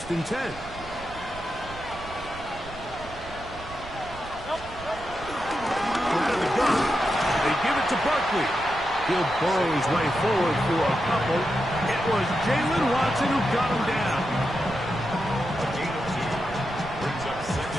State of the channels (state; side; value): noise; right; rumble, 15 dB below the sound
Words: and 10. To Barkley. He'll burrow his way forward for a couple. It was Jalen Watson who got him down. A gain of 2 brings up